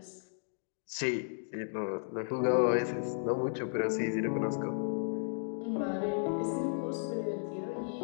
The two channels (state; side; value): silent; right; digital silence